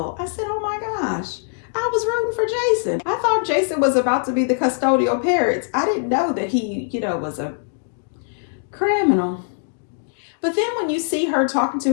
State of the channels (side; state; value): right; silent; digital silence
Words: I said, oh my gosh, I was rooting for Jason. I thought Jason was about to be the custodial parents. I didn't know that he, was a criminal. But then when you see her talking